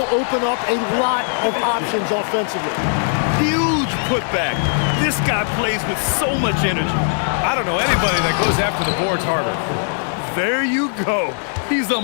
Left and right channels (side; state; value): right; silent; 58 dB below the other